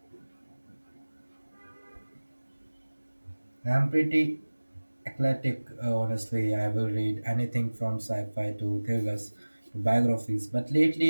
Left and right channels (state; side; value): inverted; both; correlation -1.00